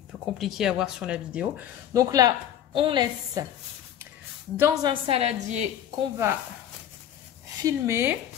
Compliqué à voir sur la vidéo. Donc là, on laisse dans un saladier qu'on va filmer.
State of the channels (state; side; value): quieter; right; 10.4 dB